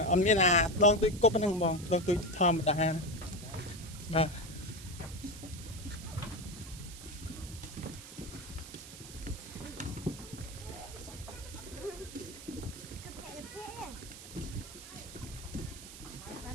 ông biết là đón tôi cốp năng bong đón tôi thơm mà ta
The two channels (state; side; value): noise; right; hiss, 14 dB below the sound